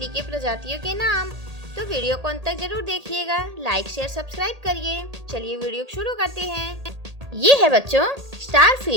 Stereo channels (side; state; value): left; late; 1.8 ms